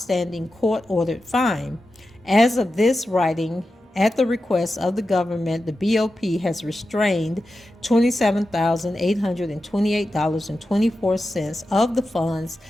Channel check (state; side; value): normal; both; correlation 0.91